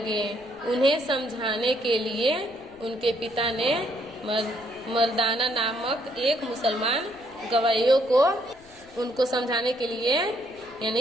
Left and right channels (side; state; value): left; noise; rumble, 27 dB below the sound